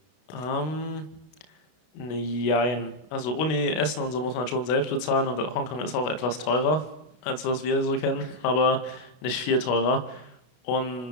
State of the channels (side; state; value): right; late; 32 ms